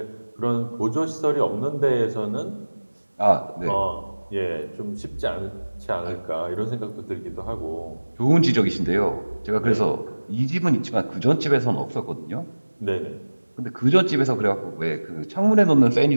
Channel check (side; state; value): both; inverted; correlation -1.00